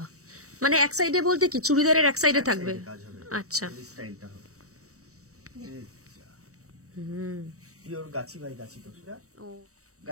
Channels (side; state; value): left; late; 0.65 ms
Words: মানে এক সাইডে বলতে কি চুড়িদারের এক সাইডে থাকবে? আচ্ছা, স্টাইলটা হবে pure Gachhi by Gachhi তসরা, O